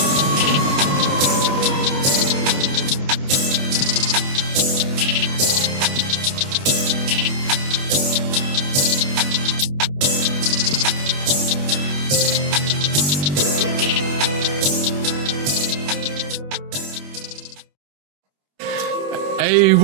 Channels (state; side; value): late; left; 21 ms